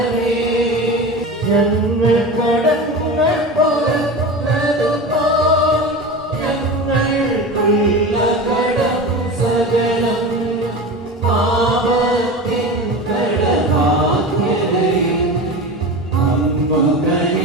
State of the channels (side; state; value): both; normal; correlation 0.28